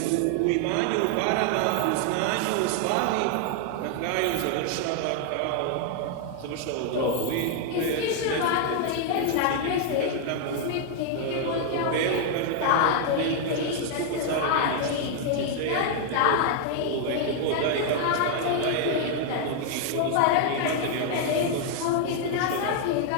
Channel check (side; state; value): both; different; correlation 0.00